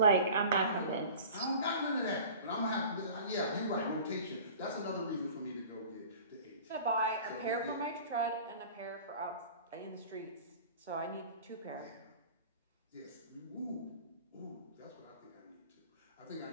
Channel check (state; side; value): inverted; both; correlation -0.41